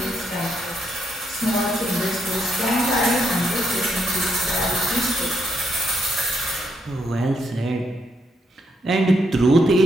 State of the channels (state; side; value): normal; both; correlation 0.77